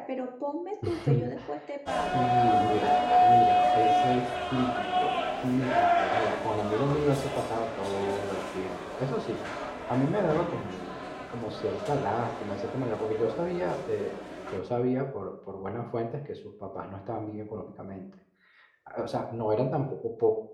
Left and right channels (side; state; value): both; identical; correlation 1.00